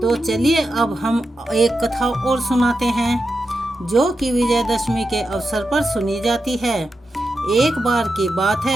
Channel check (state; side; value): normal; both; correlation 0.89